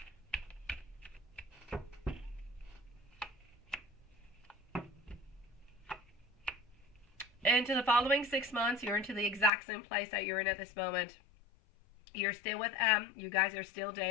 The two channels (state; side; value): drops out; right; at 9.5 s